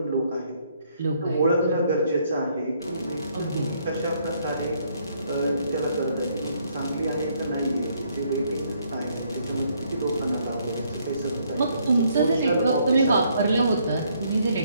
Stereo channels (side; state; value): both; inverted; correlation -0.69